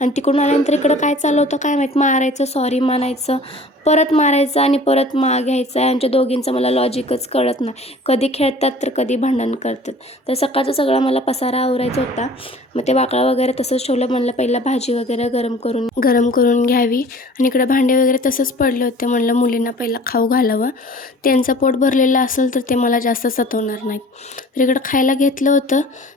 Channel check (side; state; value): both; normal; correlation 0.47